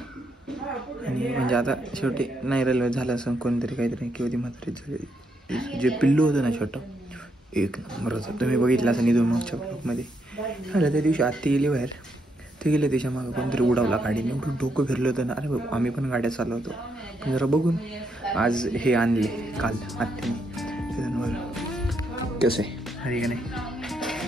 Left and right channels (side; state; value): both; normal; correlation 0.78